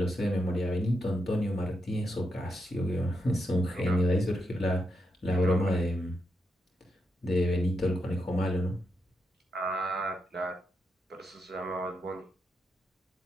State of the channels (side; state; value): both; normal; correlation 0.83